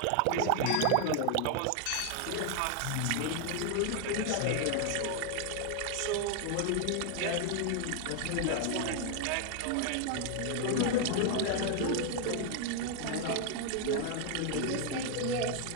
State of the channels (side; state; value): both; different; correlation 0.00